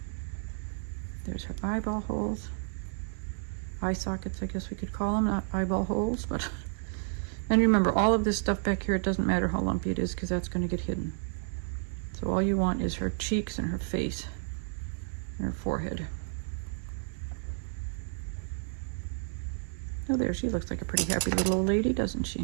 There's her eyeball holes. Eye sockets, I guess we could call them, not eyeball holes, but and remember, all of this stuff back here, it doesn't matter how lumpy it is because that's going to get hidden. So all you want is her cheeks and her face and her forehead. Oh, there, she looks like a pretty happy little old lady, doesn't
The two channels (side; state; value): left; silent; 55 dB below the other